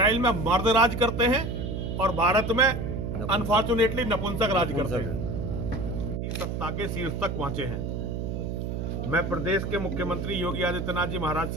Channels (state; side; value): noise; right; hum, 3 dB below the sound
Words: में मर्द राज करते हैं और भारत में अनफॉर्चुनेटली नपुंसक राज करते हैं। सत्ता के शीर्ष तक पहुंचे हैं। मैं प्रदेश के मुख्यमंत्री योगी आदित्यनाथ जी महाराज